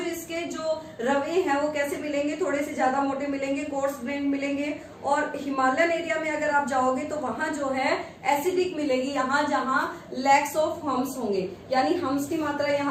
इसके जो रवे हैं वो कैसे मिलेंगे? थोड़े से ज्यादा मोटे मिलेंगे, कोर्स ग्रेन मिलेंगे। और हिमालयन एरिया में अगर आप जाओगे तो वहां जो है एसिडिक मिलेगी, यहाँ जहां लैक्स ऑफ हम्स होंगे, यानी हम्स की मात्रा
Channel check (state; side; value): identical; both; correlation 1.00